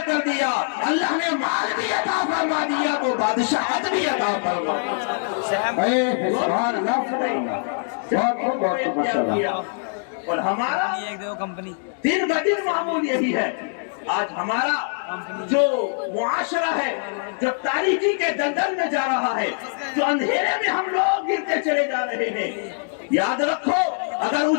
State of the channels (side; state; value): right; silent; 63 dB below the other